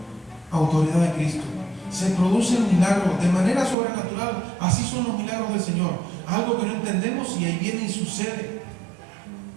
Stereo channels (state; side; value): drops out; left; at 3.8 s